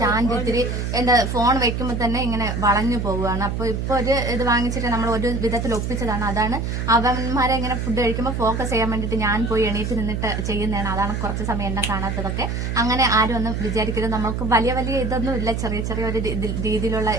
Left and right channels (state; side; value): noise; right; hum, 2 dB below the sound